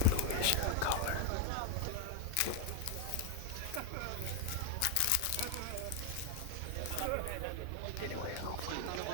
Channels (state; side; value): different; both; correlation 0.00